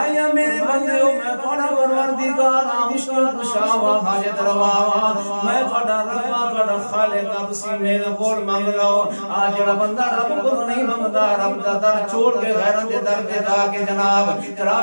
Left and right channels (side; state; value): both; inverted; correlation -1.00